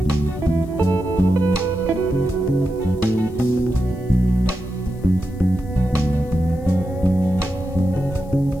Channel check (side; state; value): left; noise; hiss, 29 dB below the sound